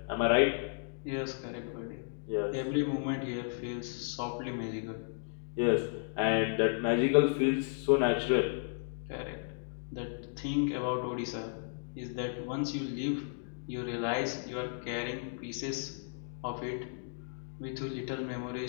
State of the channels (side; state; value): right; silent; digital silence